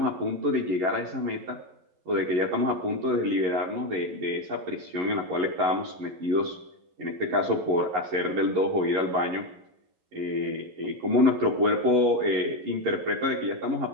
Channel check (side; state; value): left; late; 11 ms